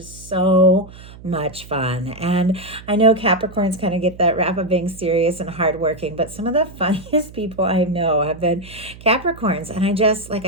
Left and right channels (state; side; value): noise; right; hum, 18 dB below the sound